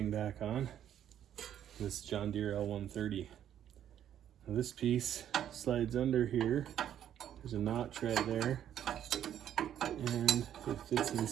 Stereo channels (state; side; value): quieter; left; 10.4 dB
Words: back on. This John Deere L130. Now this piece slides under here. There's a notch right there, and it fits